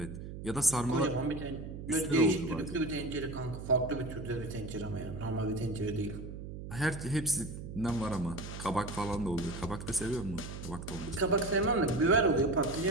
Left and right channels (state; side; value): noise; right; hum, 9 dB below the sound